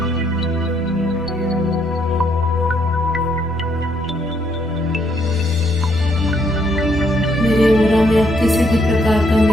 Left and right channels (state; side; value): noise; left; rumble, 24 dB below the sound